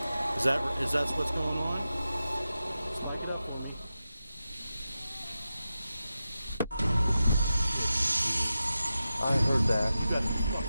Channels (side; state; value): both; inverted; correlation -0.92